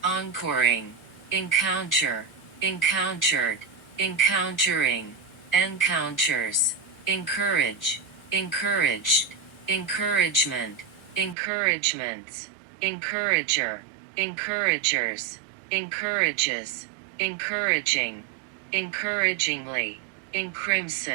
encoring, encounter, encountered, encountering, encounters, encourage, encouraged, encouragement, encouragements, encourager, encouragers, encourages, encouraging, encouragingly,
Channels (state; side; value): drops out; left; at 11.4 s